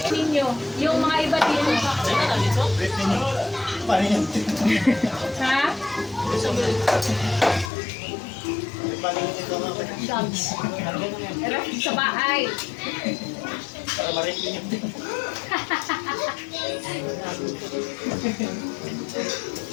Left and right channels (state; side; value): drops out; right; at 7.7 s